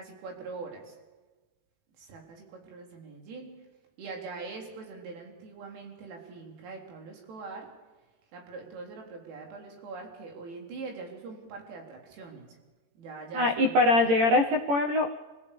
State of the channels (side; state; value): left; late; 18 ms